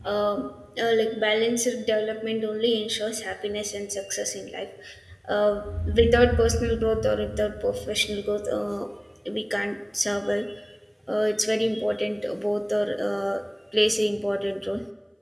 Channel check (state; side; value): identical; both; correlation 1.00